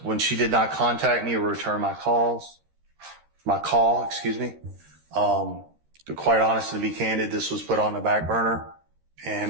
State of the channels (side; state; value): left; late; 13 ms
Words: when she did not contact me or return my call, to quite honest and to be candid, this was put on the back burner and